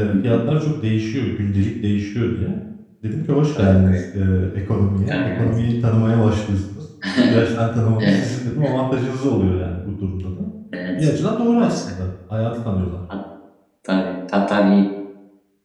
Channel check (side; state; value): both; identical; correlation 1.00